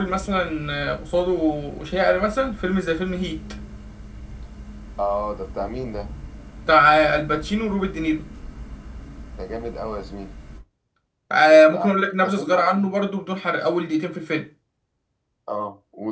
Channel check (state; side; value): identical; both; correlation 1.00